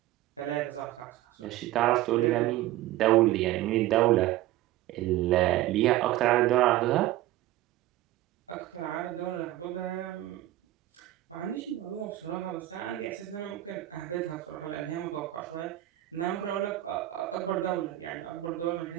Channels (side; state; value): left; quieter; 15.4 dB